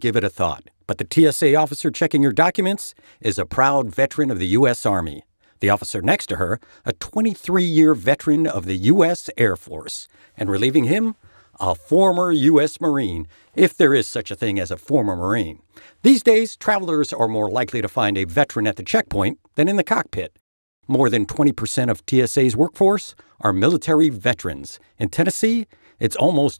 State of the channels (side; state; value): both; inverted; correlation -1.00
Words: it a thought. But the TSA officer checking your documents is a proud veteran of the U.S. Army. The officer next to her, a 23-year veteran of the U.S. Air Force. And relieving him, a former U.S. Marine, if there is such a thing as a former Marine. These days, travelers are more likely to find a veteran at the checkpoint than in the cockpit. More than 20% of TSA's workforce are military veterans. In Tennessee, it's